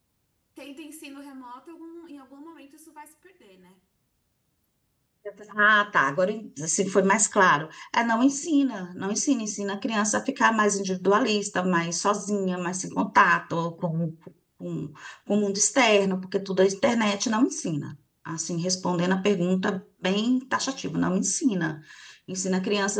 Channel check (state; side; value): identical; both; correlation 1.00